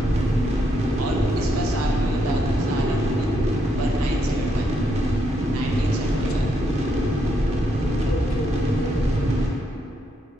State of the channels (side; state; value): both; normal; correlation 0.78